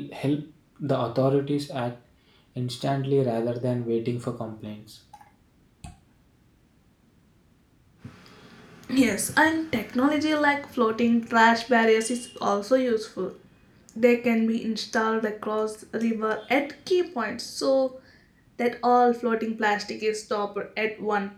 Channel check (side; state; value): both; identical; correlation 1.00